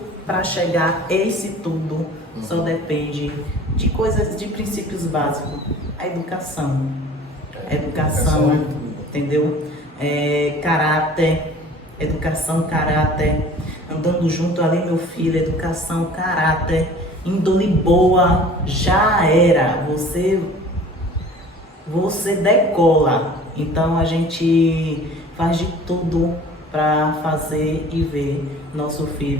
para chegar a esse tudo só depende de coisas, de princípios básicos. A educação. Educação, entendeu? Caráter. Educação, caráter, andando junto ali, meu filho, educação, caráter, índole boa, já era, você decola. Então a gente faz de tudo para fazer e ver nosso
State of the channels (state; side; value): normal; both; correlation 0.46